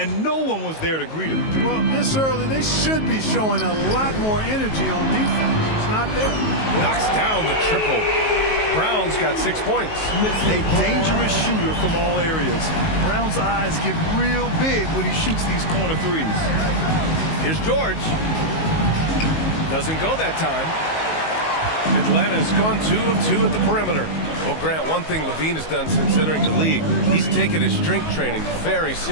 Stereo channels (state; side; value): late; right; 19 ms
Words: no one was there to greet him. Well, this early, they should be showing a lot more energy on defense. It's not there. Knocks down the triple. Brown's got 6 points. A dangerous shooter from all areas. Brown's eyes get real big when he shoots these corner threes. Here's George. Doesn't go that time. Atlanta's gone 2 of 2 at the perimeter. Well, Grant, one thing Levine has done since entering the league, he's taken his strength training very